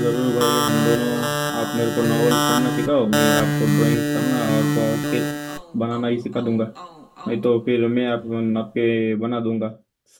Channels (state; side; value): identical; both; correlation 1.00